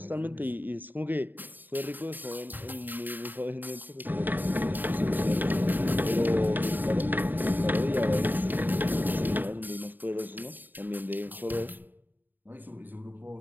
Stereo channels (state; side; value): late; left; 0.090 ms